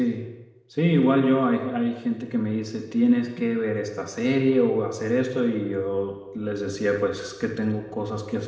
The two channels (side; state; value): both; identical; correlation 1.00